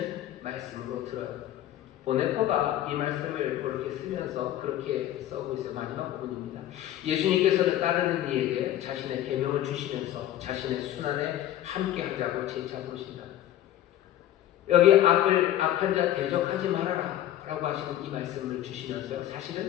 말씀으로 들어요. 보네퍼가 이 말씀을 그렇게 쓰면서 그렇게 써고 있어요. 마지막 부분입니다. 예수님께서는 따르는 이에게 자신의 계명을 주시면서 자신의 순환에 함께하자고 재차 부르신다. 여기 악한 자 대적하지 말아라 라고 하시는 이 말씀을 주시면서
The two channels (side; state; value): right; quieter; 12.6 dB